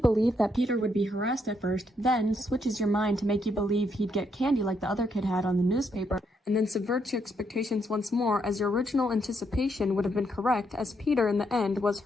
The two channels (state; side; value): normal; both; correlation 0.76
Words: that Peter would be harassed at first, then switches your mind to make you believe he'd get candy like the other kid had on the newspaper, and then subverts your expectations once more as your original anticipation would have been correct as Peter in the end was